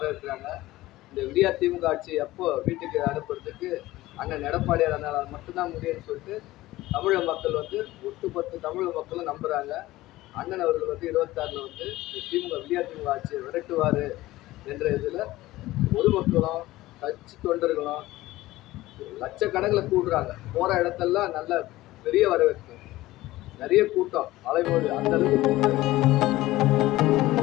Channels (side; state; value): right; quieter; 17.3 dB